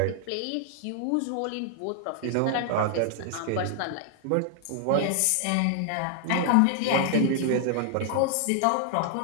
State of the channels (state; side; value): different; both; correlation 0.00